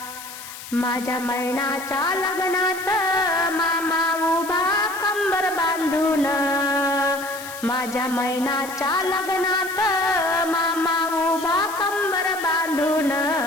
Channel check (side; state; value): left; noise; hiss, 13 dB below the sound